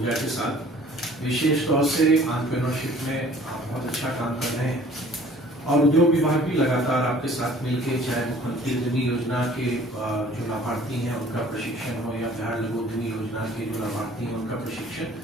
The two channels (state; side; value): normal; both; correlation 0.52